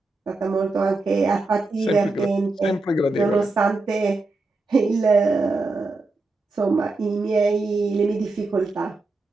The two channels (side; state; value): left; quieter; 3.3 dB